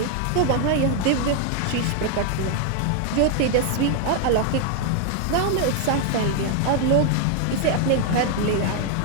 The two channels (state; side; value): different; both; correlation 0.00